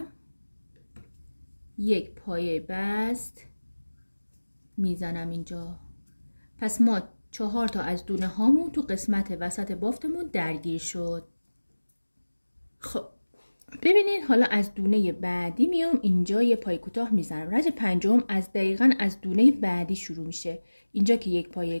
یک پایه بست میزنم اینجا. پس ما 4 تا از دونه هامون تو قسمت وسط بافتمون درگیر شد. خب ببینید حالا از دونه بعدی میام اینجا یه پای کوتاه میزنم. رج پنجم از دقیقاً از دونه بعدی شروع میشه. اینجا که یک پای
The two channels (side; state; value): both; inverted; correlation -1.00